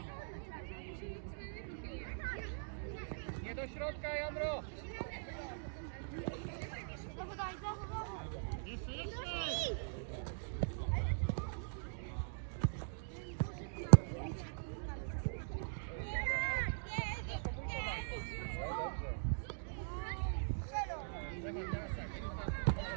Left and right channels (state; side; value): silent; left; digital silence